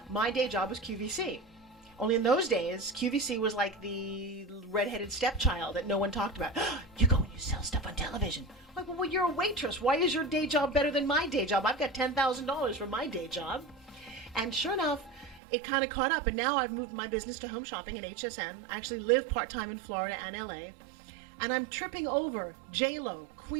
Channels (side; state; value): left; drops out; at 15.4 s